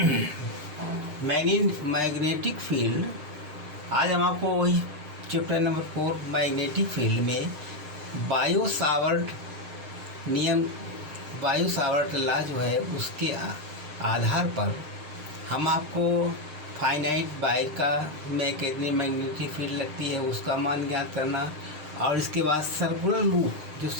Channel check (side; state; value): left; late; 6.6 ms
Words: मैग्नेटिक फील्ड, आज हम आपको वही चैप्टर नंबर 4 मैग्नेटिक फील्ड में बायो सावर्ट नियम, बायो सावर्ट लॉ जो है उसके आधार पर हम आपको फाइनाइट बाई का में कितनी मैग्नेटिक फील्ड लगती है उसका मान ज्ञात करना, और इसके बाद सर्कुलर लूप, जो